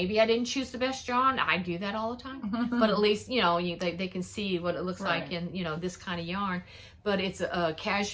I didn't choose the best yarn. I do that all the time. But at least, you know, they can see what it looks like in, you know, this kind of yarn. But it's a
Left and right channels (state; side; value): identical; both; correlation 1.00